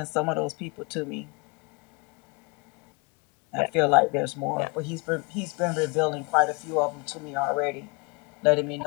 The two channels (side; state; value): right; quieter; 29.5 dB